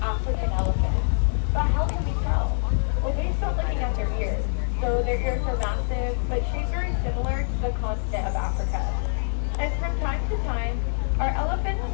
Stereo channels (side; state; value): right; silent; digital silence